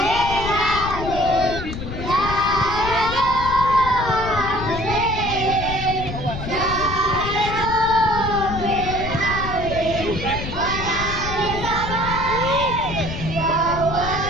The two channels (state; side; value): noise; left; rumble, 7 dB below the sound